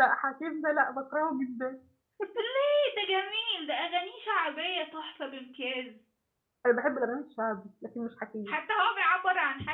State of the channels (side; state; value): both; identical; correlation 1.00